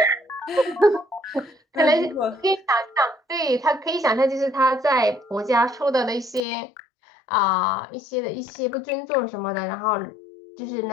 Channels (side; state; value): right; drops out; at 6.4 s